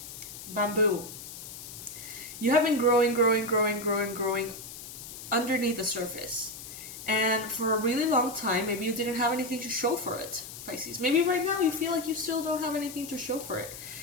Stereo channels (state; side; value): noise; left; hiss, 12 dB below the sound